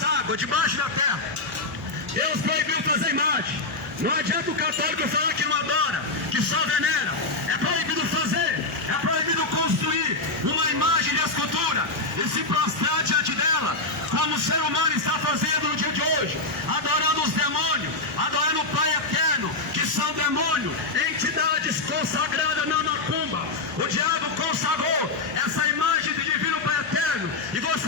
águas, debaixo da terra. Deus proibiu fazer imagem. Não adianta o católico falar que não adora, que só venera. É proibido fazer, é proibido construir uma imagem de escultura e se prostrar diante dela, como o ser humano está fazendo no dia de hoje, adorando os demônios, adorando o Pai Eterno, que são demônios, entidades consagradas na macumba. O diabo consagrou essa imagem de divino Pai Eterno e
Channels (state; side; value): quieter; right; 3.2 dB